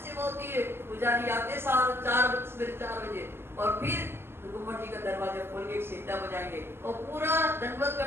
सेवा होती है। पुजारी आते सवेरे 4 बजे और फिर गुम्मट जी का दरवाजा खोल के सीटा बजाएंगे और पूरा दंडवत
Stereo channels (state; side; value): late; left; 0.11 ms